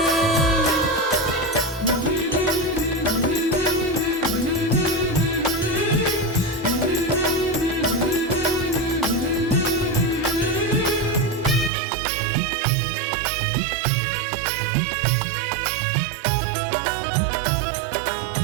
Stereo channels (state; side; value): drops out; left; at 11.7 s